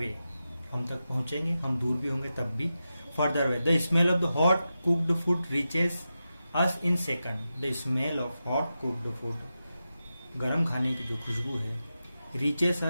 हम तक पहुंचेंगे, हम दूर भी होंगे तब भी. Further away, the smell of the hot cooked food reaches us in second, the smell of hot cooked food, गरम खाने की जो खुशबू है, reaches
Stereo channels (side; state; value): both; inverted; correlation -0.91